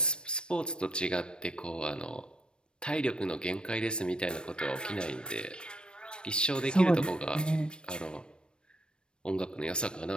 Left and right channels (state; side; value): late; right; 0.054 ms